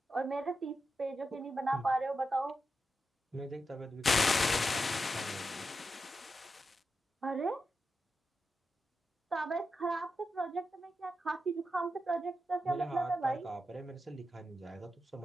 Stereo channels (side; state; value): both; normal; correlation 0.88